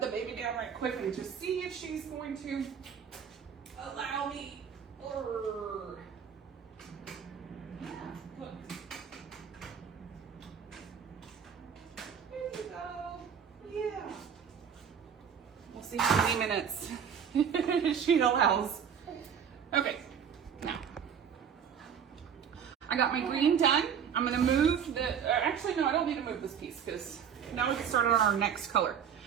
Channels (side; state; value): left; quieter; 7.8 dB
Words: baby down right quick and just see if she's going to allow me. Yeah, look. There you go. Yeah. We'll see how many minutes she allows. Okay. Now, I got my green done. I'm gonna move actually no, I don't need to move this piece because now we can start on our next color.